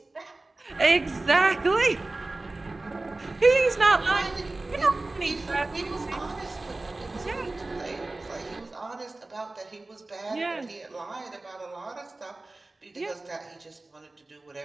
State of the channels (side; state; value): left; quieter; 3.1 dB